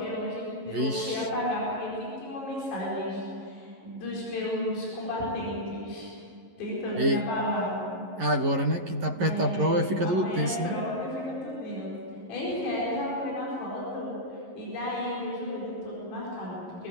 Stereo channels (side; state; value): left; late; 11 ms